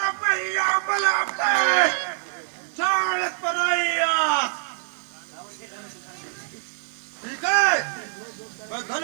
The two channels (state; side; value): silent; left; 62 dB below the other